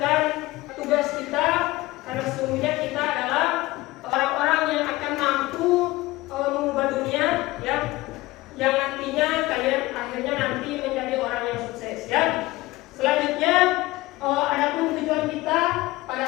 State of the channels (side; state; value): right; quieter; 19.4 dB